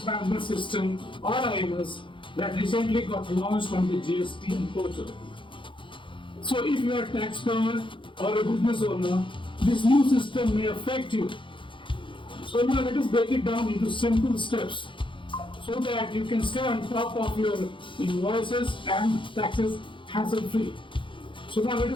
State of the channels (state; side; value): late; right; 0.24 ms